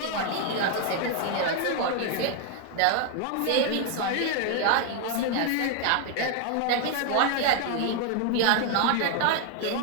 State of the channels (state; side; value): different; both; correlation 0.00